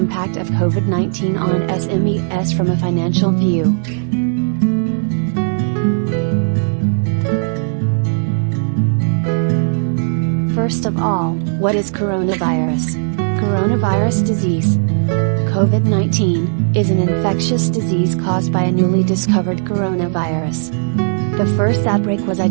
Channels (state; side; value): silent; left; digital silence